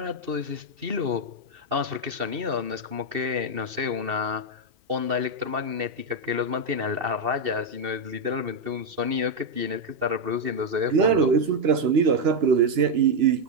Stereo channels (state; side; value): late; left; 2.7 ms